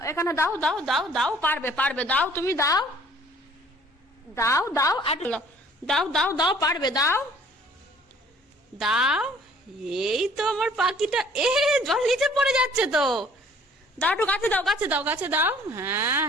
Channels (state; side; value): normal; both; correlation 0.55